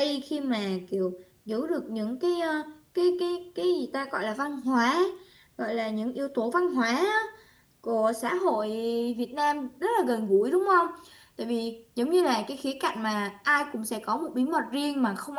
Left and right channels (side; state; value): both; identical; correlation 1.00